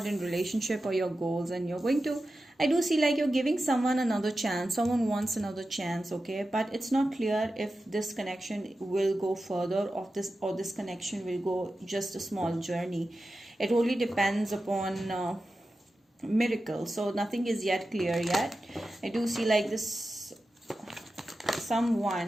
in relationship or your goals, and you're going to, I do see like you're giving someone another chance. Someone wants another chance, okay? But it's not clear if this connection will go further or this connection will go just a small journey. It only depends upon miracle. So nothing is yet clear yet. I do see like this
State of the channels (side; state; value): both; normal; correlation 0.92